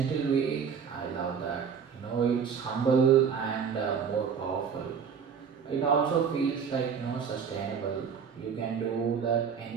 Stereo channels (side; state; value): left; quieter; 6.8 dB